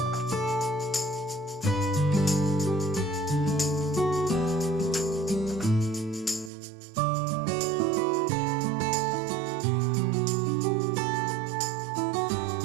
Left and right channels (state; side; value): drops out; left; at 6.5 s